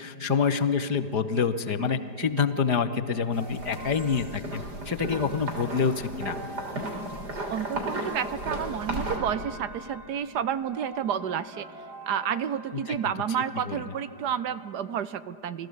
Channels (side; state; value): left; late; 4.9 ms